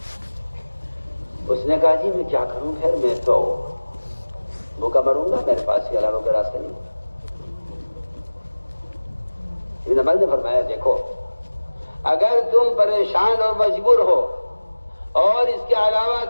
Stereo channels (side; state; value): both; inverted; correlation -1.00